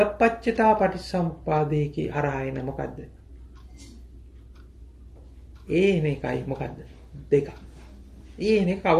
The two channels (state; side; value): identical; both; correlation 1.00